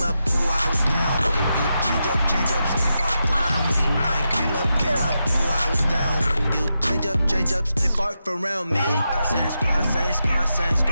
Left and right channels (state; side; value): inverted; both; correlation -0.87